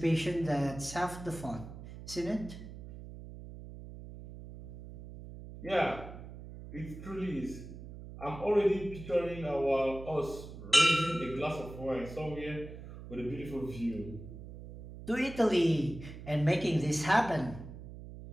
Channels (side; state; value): right; noise; hum, 13 dB below the sound